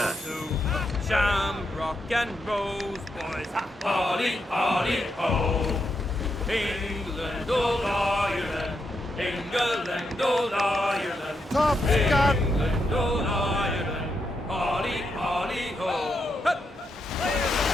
Shamrock and Rose boys. Holly, holly, ho. England, old Ireland. England, old Ireland. Top gun! England, old Ireland. Holly, holly, ho. Hup.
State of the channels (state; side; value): normal; both; correlation 0.82